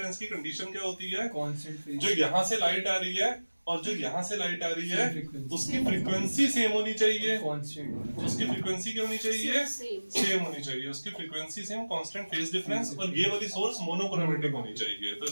की कंडीशन क्या होती है, जो यहाँ से लाइट आ रही है और जो यहाँ से लाइट आ रही है उसकी फ्रीक्वेंसी सेम होनी चाहिए। उसकी फ्रीक्वेंसी क्या होनी चाहिए, सेम होनी चाहिए। उसकी frequency same, constant phase difference, और ये वाली सोर्स मोनोक्रोमेटिक होनी चाहिए। तो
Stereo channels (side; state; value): both; inverted; correlation -1.00